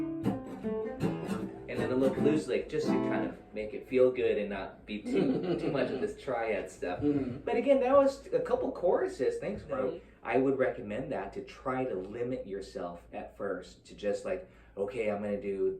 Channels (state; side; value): identical; both; correlation 1.00